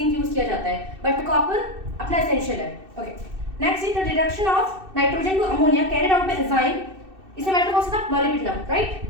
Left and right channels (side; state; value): left; late; 2.6 ms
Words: यूज किया जाता है, बट कॉपर अपना एसेंशियल है। Okay, next is the reduction of nitrogen to ammonia carried out by enzyme. इसमें मेटल कौन सा था? Molybdenum, right.